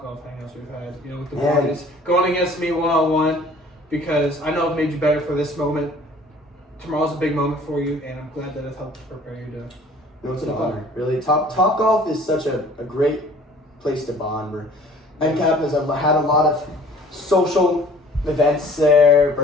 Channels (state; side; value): normal; both; correlation 0.52